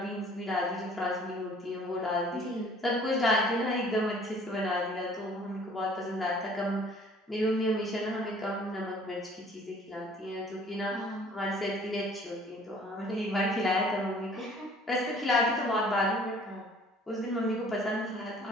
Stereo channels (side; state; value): both; normal; correlation 0.54